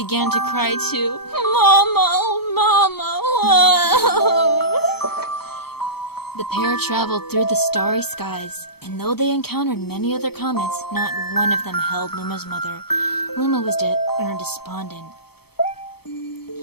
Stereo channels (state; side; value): late; right; 0.96 ms